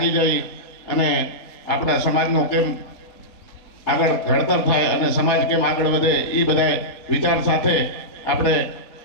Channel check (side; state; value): right; late; 4.2 ms